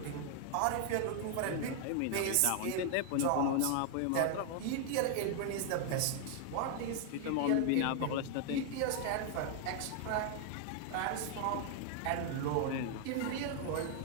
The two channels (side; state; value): both; different; correlation 0.00